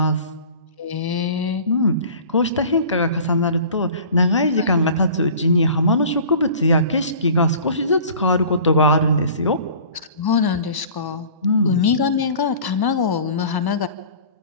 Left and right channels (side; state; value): both; inverted; correlation -0.44